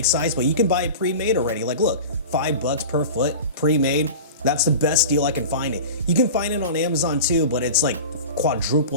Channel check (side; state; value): both; inverted; correlation -0.34